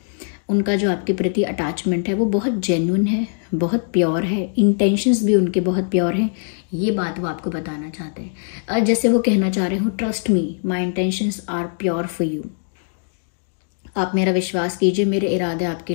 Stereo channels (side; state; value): right; silent; digital silence